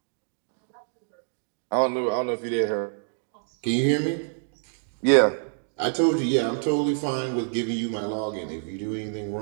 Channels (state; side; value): silent; left; digital silence